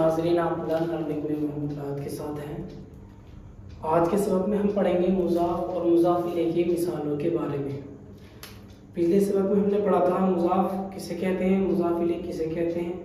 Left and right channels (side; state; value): both; identical; correlation 1.00